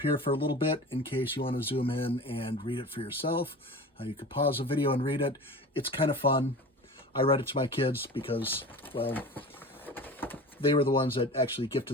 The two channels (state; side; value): normal; both; correlation 0.35